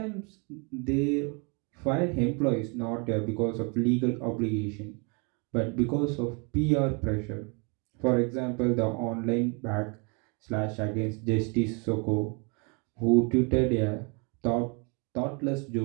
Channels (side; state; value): left; quieter; 33.2 dB